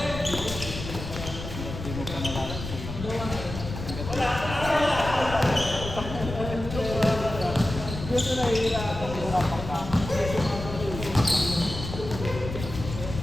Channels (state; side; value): noise; left; rumble, 8 dB below the sound